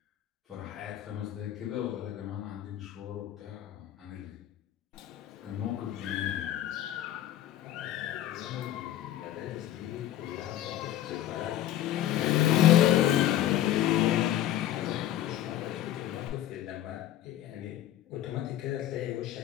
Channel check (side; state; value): right; quieter; 12.5 dB